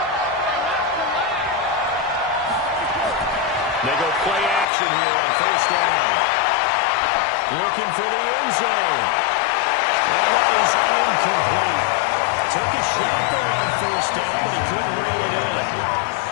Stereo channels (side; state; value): right; drops out; at 4.7 s